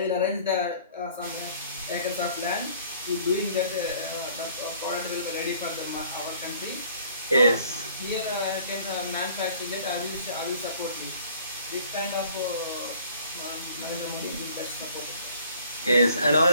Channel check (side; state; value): both; inverted; correlation -0.55